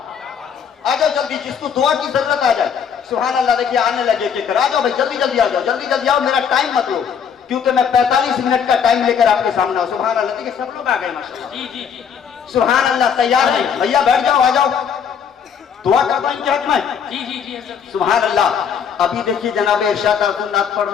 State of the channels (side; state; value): right; quieter; 7.3 dB